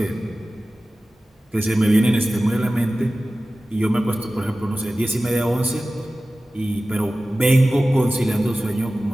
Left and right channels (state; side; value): normal; both; correlation 0.96